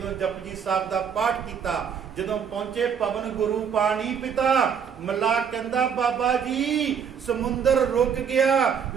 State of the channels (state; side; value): quieter; left; 7.3 dB